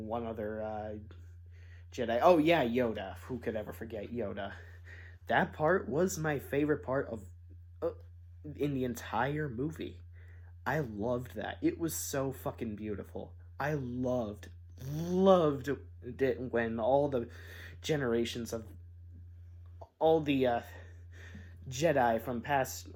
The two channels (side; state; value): both; identical; correlation 1.00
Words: one other Jedi. Oh yeah, Yoda. Who could ever forget Yoda? That part was my favorite part of in the entire movie. I loved that. It was so fucking beautiful. I loved it when all the generations of all the Jedi from